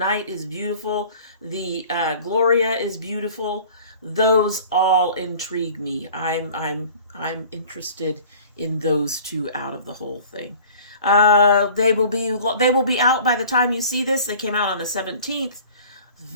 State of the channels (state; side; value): inverted; both; correlation -0.47